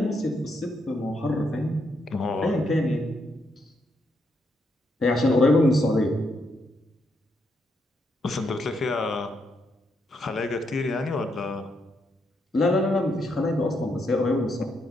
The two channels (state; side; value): normal; both; correlation 0.78